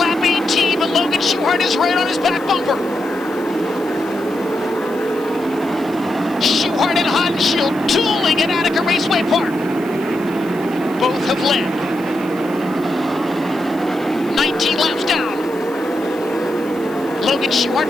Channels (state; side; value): noise; left; hiss, 24 dB below the sound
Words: 18, but Logan Schuchart is right on his back bumper. Schuchart and Hodenshield dueling at Attica Raceway Park. Both have led. 19 laps down. Logan Schuchart